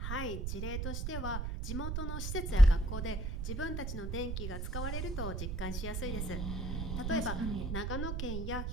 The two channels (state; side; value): noise; right; rumble, 2 dB below the sound